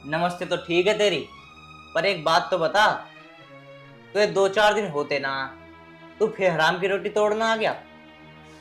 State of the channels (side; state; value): both; identical; correlation 1.00